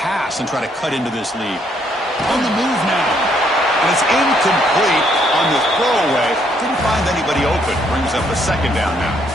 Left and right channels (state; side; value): normal; both; correlation 0.70